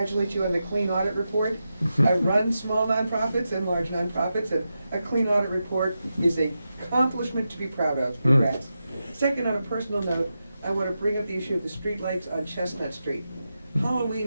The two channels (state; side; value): inverted; both; correlation -0.89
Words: you on the clean audit report. I run small nonprofits and large nonprofits, and a clean audit report is an accomplishment to be proud of. Congrats. Second, on a personal note, I want to bring up the issue of the streetlights on Chestnut Street.